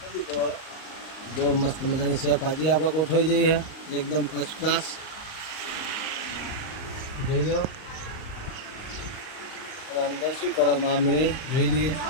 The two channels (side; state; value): right; late; 38 ms